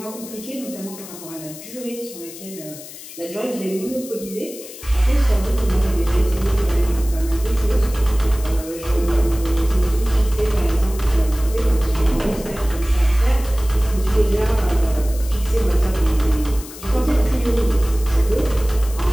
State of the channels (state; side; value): noise; left; hiss, 15 dB below the sound